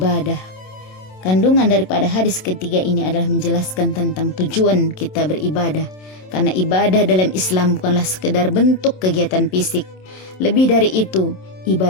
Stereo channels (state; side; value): late; right; 27 ms